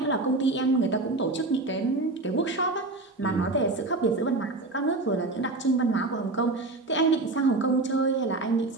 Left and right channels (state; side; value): quieter; left; 3.1 dB